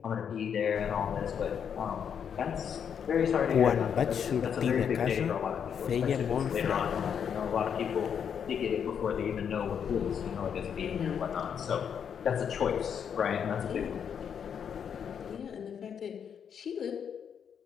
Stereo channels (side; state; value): right; quieter; 7.8 dB